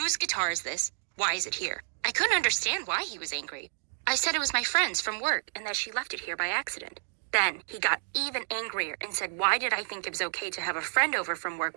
guitar is this? Why is it here?" I couldn't understand why he was angry. I said it was my friend's from work and that she left it here by accident. Then he got even angrier and said, why did I think it was okay to have a friend over from work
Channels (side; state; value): left; silent; 58 dB below the other